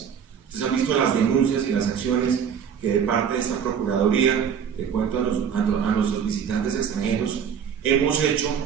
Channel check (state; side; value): quieter; left; 7.6 dB